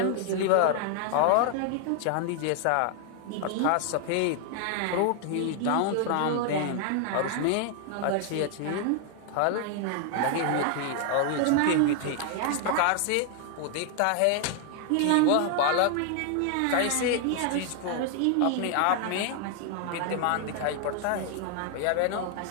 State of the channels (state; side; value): different; both; correlation 0.00